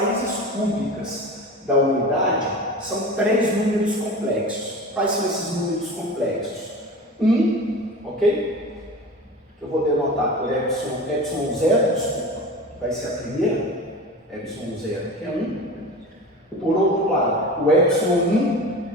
cúbicas da unidade são 3 números complexos. Quais são esses números complexos? 1, ok? Que eu vou denotar por epsilon 0, desculpa, que vai ser a primeira, epsilon 0, que é 1. Por outro lado, o epsilon 1,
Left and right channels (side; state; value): both; normal; correlation 0.33